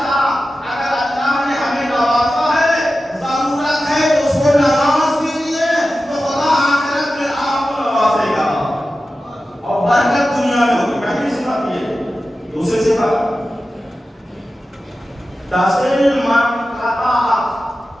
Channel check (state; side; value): normal; both; correlation 0.94